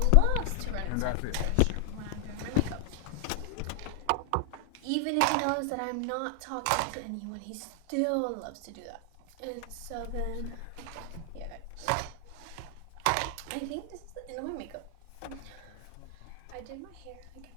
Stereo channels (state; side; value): different; both; correlation 0.00